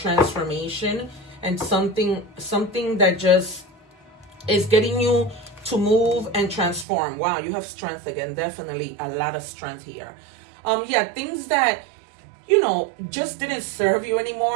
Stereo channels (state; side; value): drops out; left; at 6.9 s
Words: and something that just is getting you to move and transform. Wow, you have strength again. Definitely a lot of strength here. Yeah, things that, you know, just didn't serve you